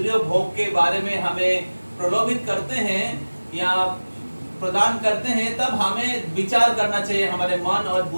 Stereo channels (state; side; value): inverted; both; correlation -1.00